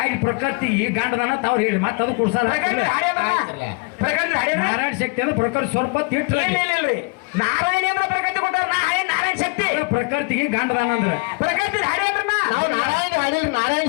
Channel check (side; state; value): right; quieter; 30.9 dB